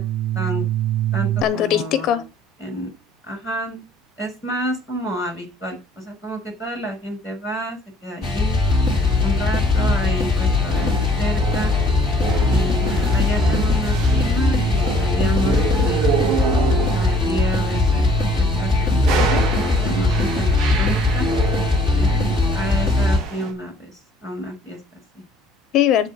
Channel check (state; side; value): normal; both; correlation 0.57